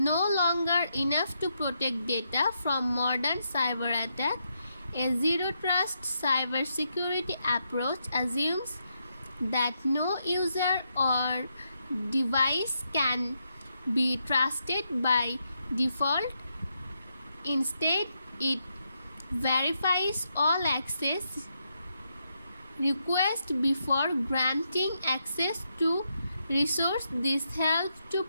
longer enough to protect data from modern cyber attack. A zero trust cybersecurity approach assumes that no user or device can be trusted by default. Instead, it verifies all access requests before granting access to resource. This helps to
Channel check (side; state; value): both; inverted; correlation -0.81